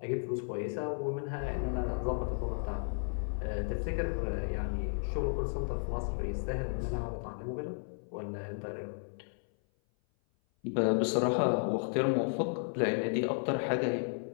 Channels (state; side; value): silent; right; 55 dB below the other